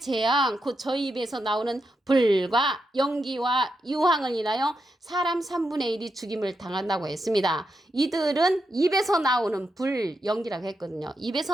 곧 저희 입에서 나오는 불과 연기와 유황을 인하여 사람 3분의 1이 죽임을 당한다고 했습니다. 이들은 입에서 나오는 불, 연기라고 했거든요.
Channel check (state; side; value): normal; both; correlation 0.85